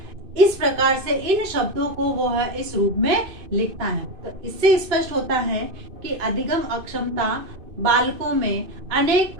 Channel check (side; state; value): left; late; 2.6 ms